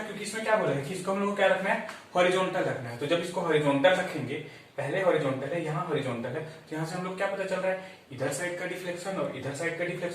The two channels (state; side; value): identical; both; correlation 1.00